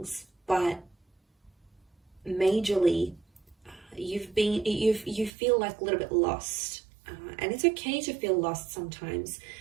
but majorly you feel like a little bit lost, and it's okay to feel lost sometimes,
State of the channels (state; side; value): drops out; left; at 5.3 s